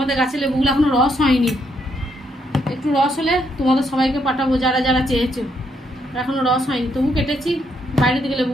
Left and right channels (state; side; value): normal; both; correlation 0.75